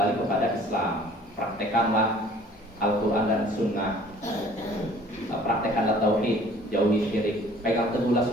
kepada Islam. Praktekanlah Al-Quran dan Sunnah, praktekanlah tauhid, jauhi syirik, pegang teguhlah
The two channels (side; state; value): both; normal; correlation 0.53